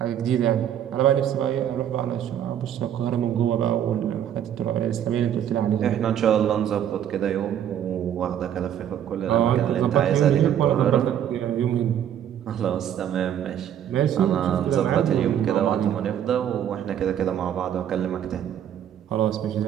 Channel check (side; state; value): left; quieter; 10.0 dB